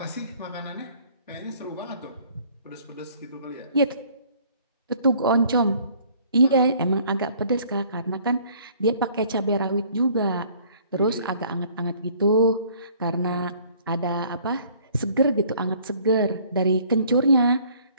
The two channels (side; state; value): both; inverted; correlation -0.57